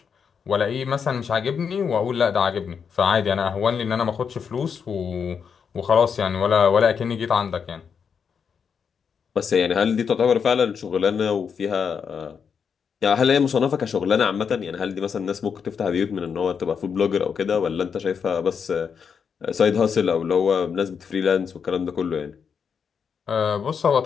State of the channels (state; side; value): quieter; right; 6.6 dB